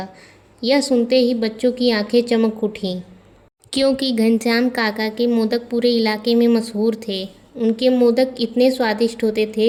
यह सुनते ही बच्चों की आंखें चमक उठीं, क्योंकि घनश्याम काका के मोदक पूरे इलाके में मशहूर थे। उनके मोदक इतने स्वादिष्ट होते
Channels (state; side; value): identical; both; correlation 1.00